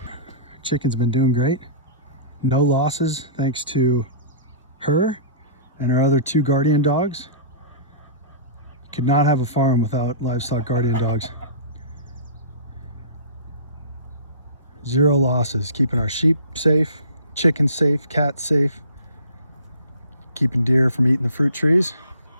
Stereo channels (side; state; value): both; inverted; correlation -0.39